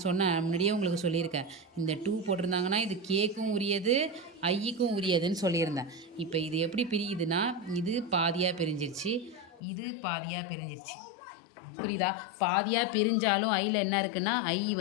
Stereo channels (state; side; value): drops out; right; at 9.6 s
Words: முன்னாடியே உங்களுக்கு சொல்லியிருக்கேன். இந்த 2 போட்டிருந்தாங்கன்னா இது கேக்கும் உரியது, ஐக்கும் உரியதுன்னு சொல்லியிருந்தேன். இப்போ இது எப்படி பிரியுதுன்னா, இது பாதியாக பிரிஞ்சிருச்சு, இது பாதியாக பிரிஞ்சிருச்சு. புரியுதா? பாதியாக பிரிஞ்சாலும் ஐயில் என்ன இருக்குன்னா, ஐ